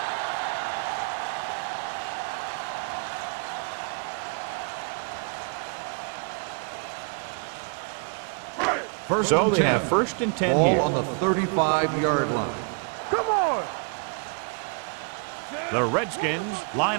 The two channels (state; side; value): quieter; left; 38.1 dB